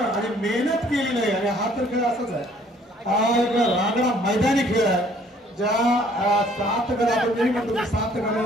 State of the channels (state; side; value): normal; both; correlation 0.60